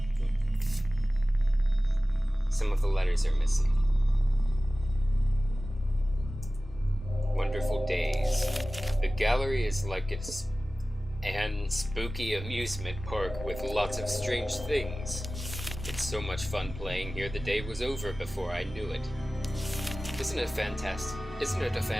Some of the letters are missing. Wonderful days. The gallery is like an spooky amusement park with lots of strange things. It's so much fun playing here, the day was over before I knew it. Isn't it a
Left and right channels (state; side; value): normal; both; correlation 0.97